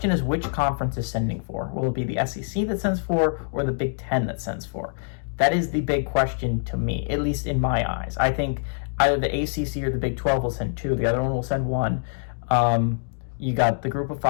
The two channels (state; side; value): silent; right; digital silence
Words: is which conference is sending for. Will it be the SEC that sends for or the Big Ten that sends for? That is the big question to me, at least in my eyes. I think either the ACC or the Big 12 will send 2. The other one will send 1. You got the Group of